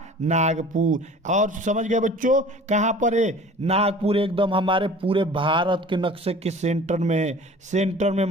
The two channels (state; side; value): normal; both; correlation 0.44